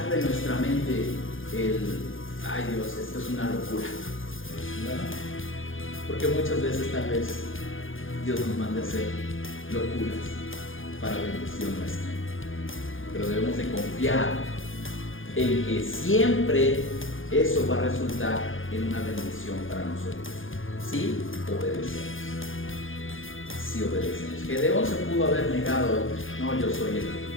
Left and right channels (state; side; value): late; right; 0.58 ms